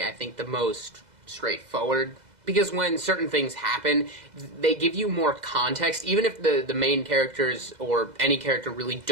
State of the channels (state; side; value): late; left; 2.0 ms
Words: I think, the most straightforward. Because when certain things happen, they give you more context. Even if the main characters or any character really